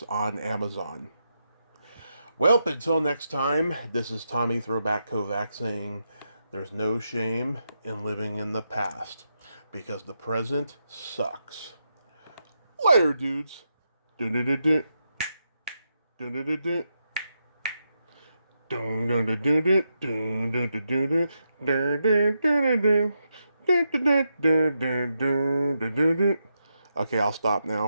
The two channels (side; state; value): both; inverted; correlation -0.84